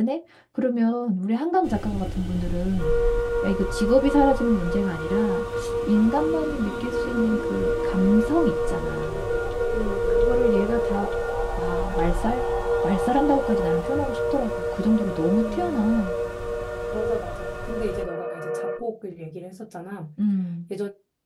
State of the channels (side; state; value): both; identical; correlation 1.00